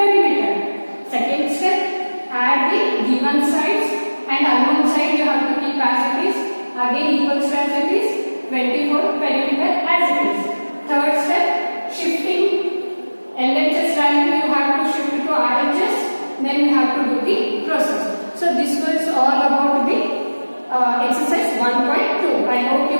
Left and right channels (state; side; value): inverted; both; correlation -1.00